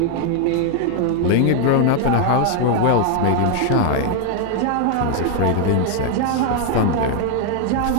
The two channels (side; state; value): both; different; correlation 0.00